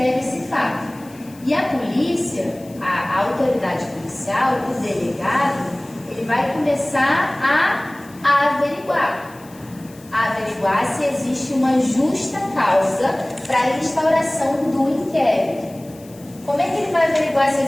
esse fato. E a polícia, a autoridade policial, o delegado, ele vai começar a averiguar se existe uma justa causa para a instauração do inquérito. Como é que ele vai averiguar se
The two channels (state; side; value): noise; left; hiss, 24 dB below the sound